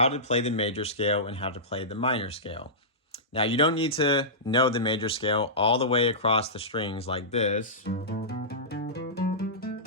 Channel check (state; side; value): normal; both; correlation -0.18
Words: to play the major scale and how to play the minor scale. Now, you don't need to know the major scale all the way across the strings like this.